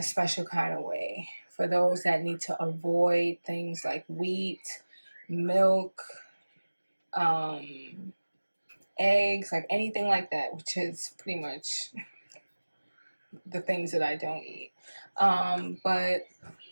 special kind of way. For those that need to avoid things like wheat, milk, eggs, like anything like that, which is pretty much the things that I don't eat. But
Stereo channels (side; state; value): both; inverted; correlation -1.00